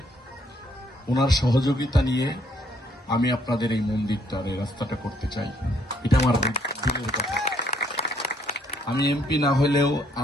ওনার সহযোগিতা নিয়ে আমি আপনাদের এই মন্দিরটার এই রাস্তাটা করতে চাই। এটা আমার দিলের কথা। আমি এমপি না হলেও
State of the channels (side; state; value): both; normal; correlation 0.67